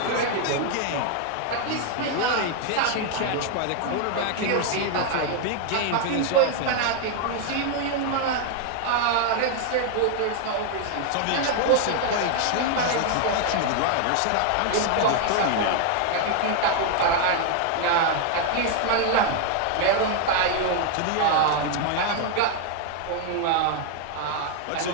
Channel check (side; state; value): both; different; correlation 0.00